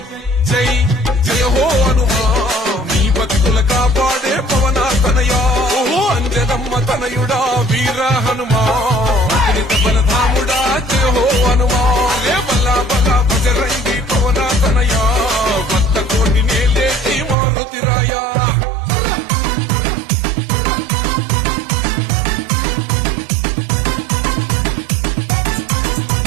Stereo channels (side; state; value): left; drops out; at 17.4 s